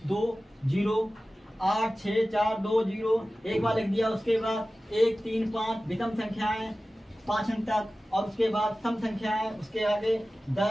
2 0 8 6 4 2 0 एक बार लिख दिया। उसके बाद 1 3 5 विषम संख्याएं 5 अंक तक, और उसके बाद सम संख्याएं, उसके आगे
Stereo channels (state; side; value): normal; both; correlation 0.96